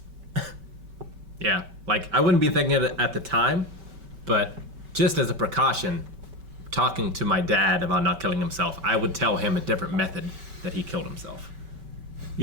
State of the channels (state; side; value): late; left; 5.2 ms